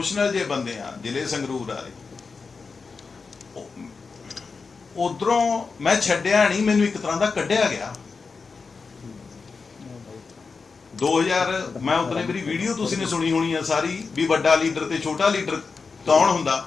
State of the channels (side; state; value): right; quieter; 4.7 dB